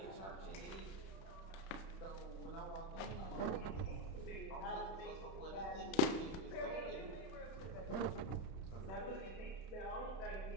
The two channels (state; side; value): late; right; 32 ms